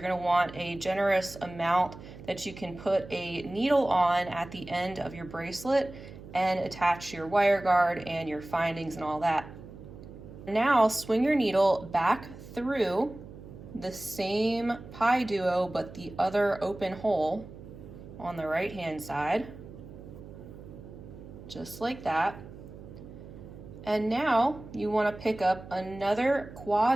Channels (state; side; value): noise; right; hum, 15 dB below the sound